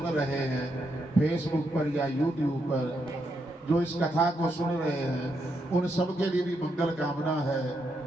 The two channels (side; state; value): both; normal; correlation 0.80